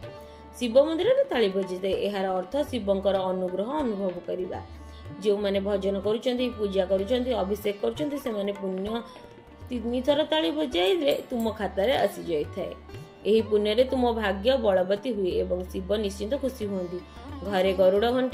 ଶିବ ମନ୍ଦିରରେ ତାଳି ବଜିଥାଏ। ଏହାର ଅର୍ଥ ଶିବଙ୍କର ଅନୁଗ୍ରହ ଅନୁଭବ କରିବା। ଯେଉଁମାନେ ଭଜନ କରୁଛନ୍ତି, ପୂଜା କରୁଛନ୍ତି, ଅଭିଷେକ କରୁଛନ୍ତି ସେମାନେ ପୁଣ୍ୟ 3 ଥର ତାଳି ବଜାଇଲେ ତୁମ ଖାତାରେ ଆସିଯାଇଥାଏ। ଏହି ପୁଣ୍ୟରେ ତୁମ ଭାଗ୍ୟ ବଳବତୀ ହୁଏ ଏବଂ ଶିବ ନିଶ୍ଚିନ୍ତ ଖୁସି ହୁଅନ୍ତି। ଘରେ ଗରୁଡ଼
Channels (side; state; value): both; identical; correlation 1.00